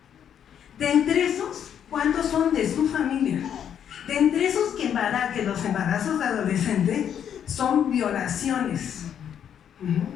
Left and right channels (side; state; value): right; quieter; 9.0 dB